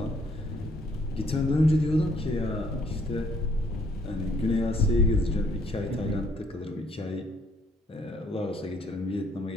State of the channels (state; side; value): normal; both; correlation 0.66